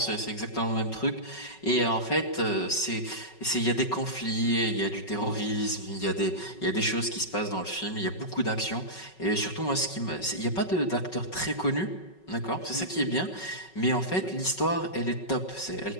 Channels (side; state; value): right; late; 5.4 ms